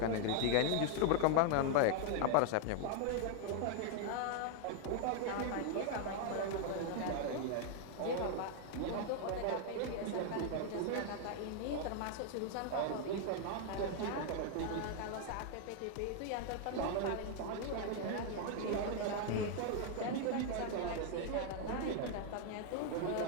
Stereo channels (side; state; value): both; different; correlation 0.00